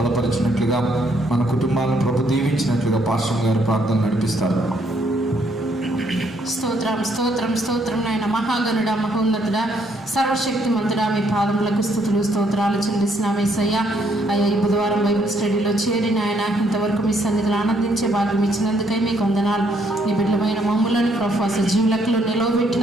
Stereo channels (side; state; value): both; normal; correlation 0.70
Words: మన కుటుంబాలను ప్రభు దీవించినట్లుగా పాస్టర్ గారు ప్రార్థన నడిపిస్తారు. స్తోత్రం స్తోత్రం స్తోత్రం నాయన మహాగణుడా, మహోన్నతుడా, సర్వశక్తిమంతుడా, మీ పాదములకు స్తుతులు స్తోత్రాలు చెల్లిస్తున్నాం యేసయ్యా. అయ్యా, ఈ బుధవారం బైబిల్ స్టడీలో చేరి నాయన ఇంతవరకు మీ సన్నిధిలో ఆనందించే భాగ్యం ఇచ్చినందుకై మీకు వందనాలు. నీ బిడ్డలమైన మమ్ములను ప్రభు సజీవులకులో